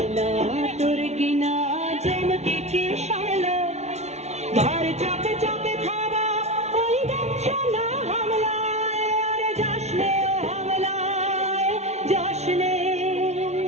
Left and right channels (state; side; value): late; left; 0.32 ms